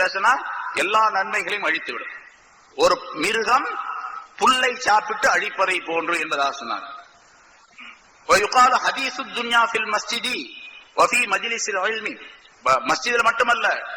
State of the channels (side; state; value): both; identical; correlation 1.00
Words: பேசினா எல்லா நன்மைகளையும் அழித்து விடும். ஒரு மிருகம் புல்லை சாப்பிட்டு அழிப்பதை போன்று என்பதாக சொன்னார். மஸ்ஜிதில் மட்டுமல்ல,